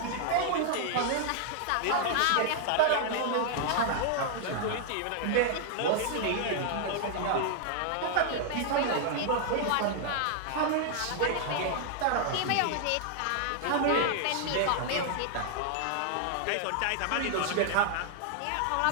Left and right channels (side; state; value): both; different; correlation -0.01